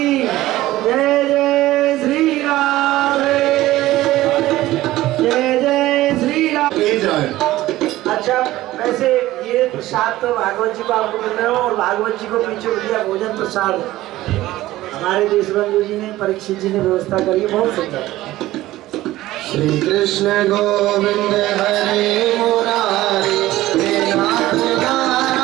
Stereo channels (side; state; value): left; quieter; 16.2 dB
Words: जय जय श्री राम जय जय श्री राम। अच्छा वैसे ये प्रसाद तो भागवत जी को आपको मिल रहे हो और भागवत जी को पीछे दिया भोजन प्रसाद हमारे देश बंधु जी ने परीक्षित जी ने व्यवस्था करी बहुत सुंदर। श्री कृष्ण गोविंद हरे मुरारी हे नाथ